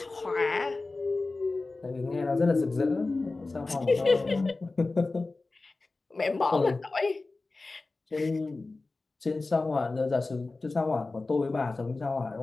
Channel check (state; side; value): quieter; right; 3.5 dB